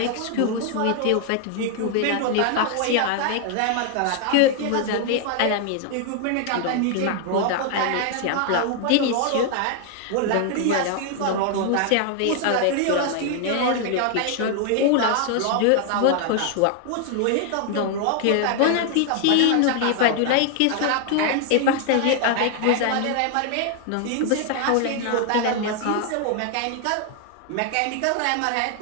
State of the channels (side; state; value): both; different; correlation 0.00